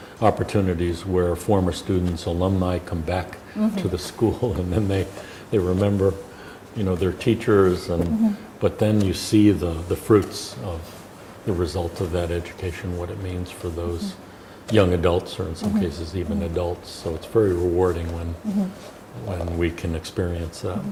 opportunities where former students, alumni come back to the school, and then they remember, their teachers, and but then you see the fruits of the result of that education, what it means for those young adults, or in some cases even adults. So it's very rewarding when we can experience that.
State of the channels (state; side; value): identical; both; correlation 1.00